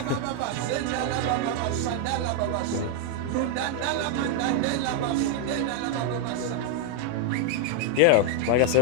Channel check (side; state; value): both; different; correlation 0.00